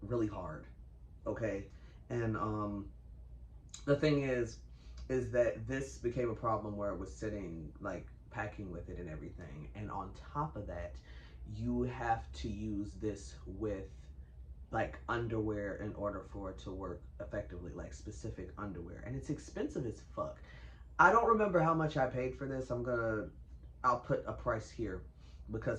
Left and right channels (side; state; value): both; identical; correlation 1.00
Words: really hard, okay? And the thing is that this became a problem where it was sitting, like packing with it and everything. And on top of that, you have to use this with like underwear in order for it to work effectively, like specific underwear. And it's expensive as fuck. I don't remember how much I paid for this. I'll put a price here